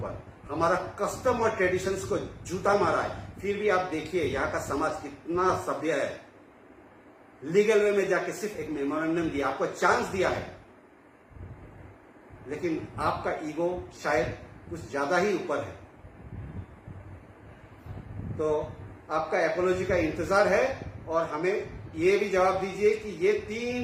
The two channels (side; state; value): both; identical; correlation 1.00